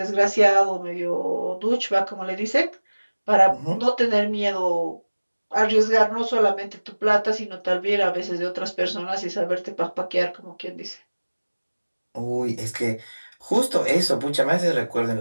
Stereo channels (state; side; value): inverted; both; correlation -1.00